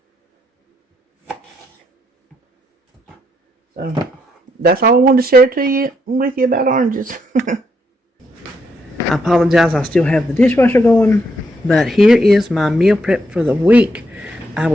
So that's all I wanted to share with you about oranges. I apologize, I still have the dishwasher going, but here is my meal prep for the week. I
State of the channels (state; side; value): normal; both; correlation 0.77